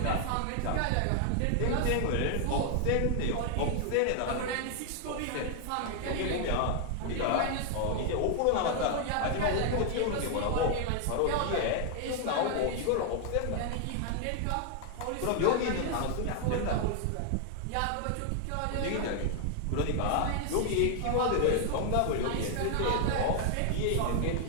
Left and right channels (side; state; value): both; different; correlation 0.00